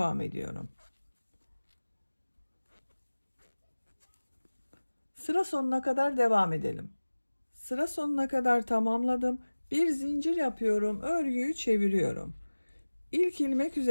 ediyorum. Sıra sonuna kadar devam edelim. Sıra sonuna kadar tamamladım. Bir zincir yapıyorum, örgüyü çeviriyorum. İlk ilmek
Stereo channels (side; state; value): both; inverted; correlation -1.00